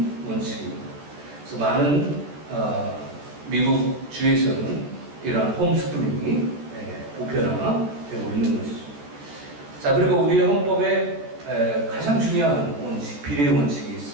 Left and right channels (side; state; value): left; late; 14 ms